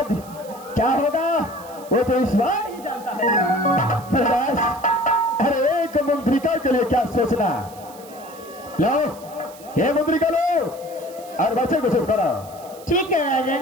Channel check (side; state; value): right; noise; hiss, 21 dB below the sound